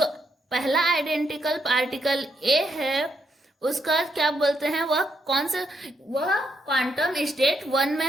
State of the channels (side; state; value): both; normal; correlation 0.78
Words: पहला आइडेंटिकल पार्टिकल ए है उसका क्या बोलते हैं, वह क्वांटम स्टेट 1